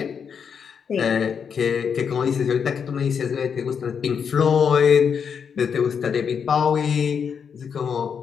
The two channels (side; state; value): right; quieter; 6.9 dB